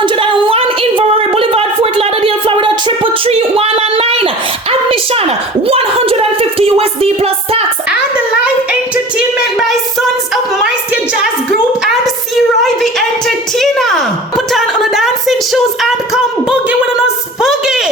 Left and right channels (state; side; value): normal; both; correlation 0.39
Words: Inverary Boulevard, Fort Lauderdale, Florida, 333-199. Admission, $150 USD plus tax. And live entertainment by Sons of Maestro Jazz Group and C-Roy the Entertainer. Put on the dancing shoes and come boogie with us